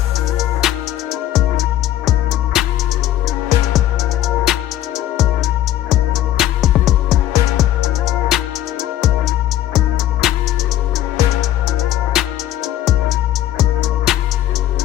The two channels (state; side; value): quieter; right; 12.8 dB